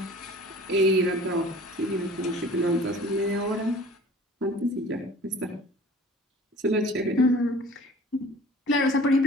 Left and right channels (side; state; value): both; normal; correlation 0.46